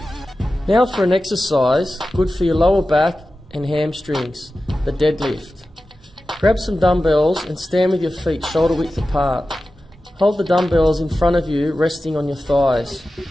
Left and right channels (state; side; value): normal; both; correlation 0.94